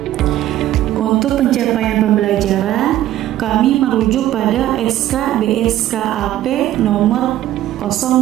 Untuk pencapaian pembelajaran, kami merujuk pada SK BSKAP nomor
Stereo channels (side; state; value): left; quieter; 13.3 dB